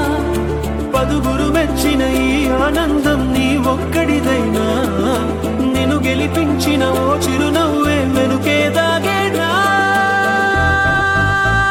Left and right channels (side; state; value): both; identical; correlation 1.00